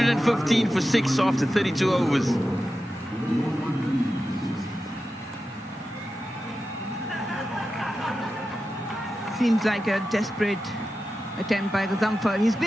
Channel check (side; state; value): both; normal; correlation 0.92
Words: for 6 after 32 overs. Seems like a desperate attempt by Gazamfar. He's